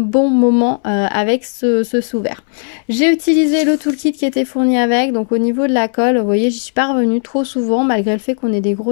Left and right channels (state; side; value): silent; right; 68 dB below the other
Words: moment avec ce sous-verre. J'ai utilisé le toolkit qui était fourni avec, donc au niveau de la colle, vous voyez, j'y suis pas revenue trop souvent malgré le fait qu'on ait des